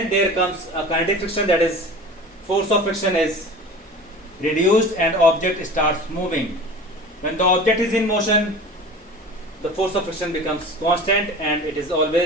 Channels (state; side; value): normal; both; correlation 0.37